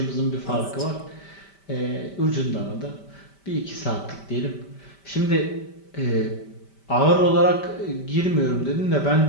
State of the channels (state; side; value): late; right; 5.1 ms